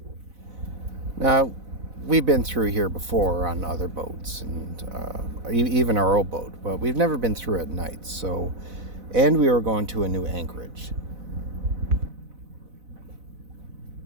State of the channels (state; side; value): late; left; 4.0 ms